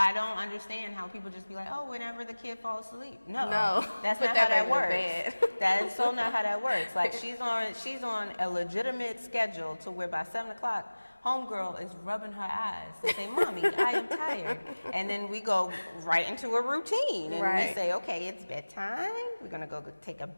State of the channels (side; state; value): both; inverted; correlation -1.00